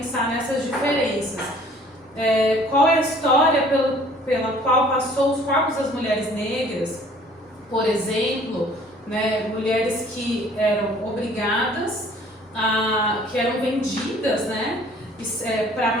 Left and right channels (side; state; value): both; normal; correlation 0.54